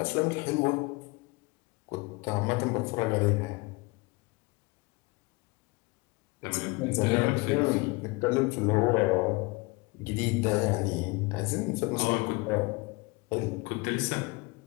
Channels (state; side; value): quieter; right; 25.1 dB